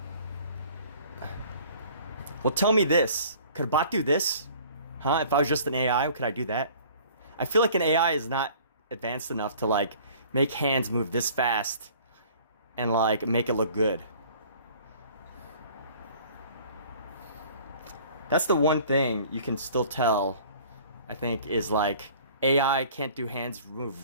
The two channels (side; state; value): both; inverted; correlation -0.50